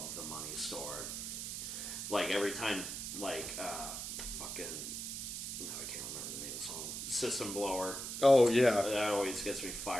The Money Store. Every time, fucking... No, I can't remember the name of the song. System Blower. Oh, yeah. That always gets me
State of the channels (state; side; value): noise; right; hiss, 5 dB below the sound